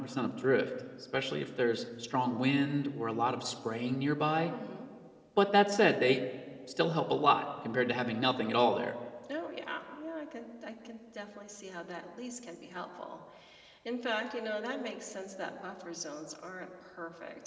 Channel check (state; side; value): identical; both; correlation 1.00